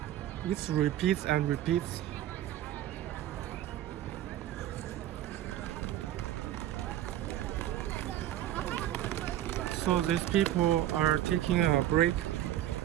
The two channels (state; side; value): quieter; left; 12.8 dB